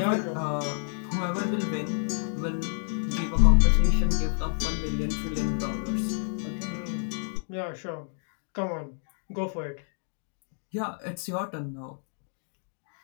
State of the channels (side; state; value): right; silent; 59 dB below the other